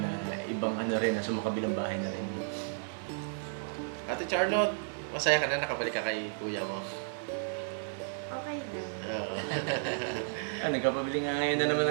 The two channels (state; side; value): silent; left; 56 dB below the other